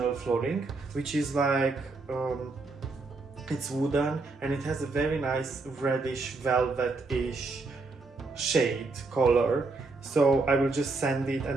flooring, which is like it's wooden and it has a very nice reddish velvet-ish shade color, so I will just sand it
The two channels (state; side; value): quieter; left; 3.7 dB